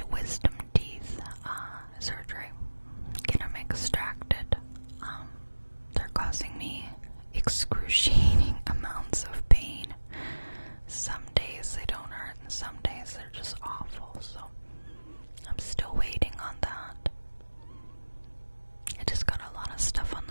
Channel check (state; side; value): inverted; both; correlation -1.00